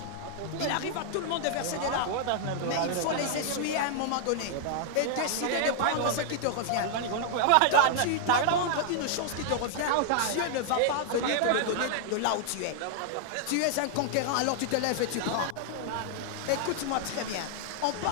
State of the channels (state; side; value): different; both; correlation 0.00